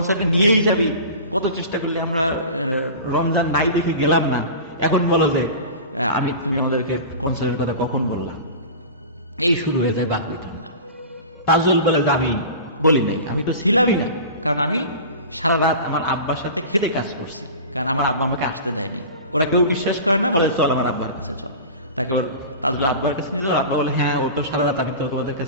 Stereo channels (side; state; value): both; inverted; correlation -0.34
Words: নিয়েই যাবি, কত চেষ্টা করলি আমরা রমজান নাই দেখে গেলাম না, এখন বলো যে তুমি আমাদেরকে কনসার্টের কথা কখন বললাম। এই শুরু হয়ে যায় বাকবিতণ্ডা। তাজুল বলে যে আমি বলি নাই, আমি তো ছিলামই না, কারণ আমি সারা রাত আমার আব্বার সাথে খেতে কাজ করছি, কারণ আমার আব্বা আমাকে আসতে দেয়নি। ওরা কেউ বিশ্বাস করে না, বলে চল আমার আব্বার কাছে চল। তাকে ওর তাজুল আব্বার কাছে নিয়ে যাও। আব্বা বলে হ্যাঁ ও তো সারা রাত, আমি তো তোমাদের